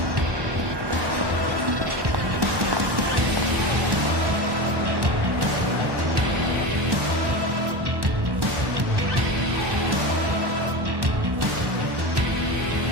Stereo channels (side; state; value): left; late; 1.1 ms